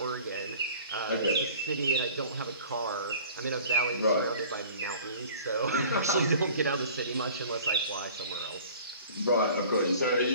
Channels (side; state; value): both; inverted; correlation -0.46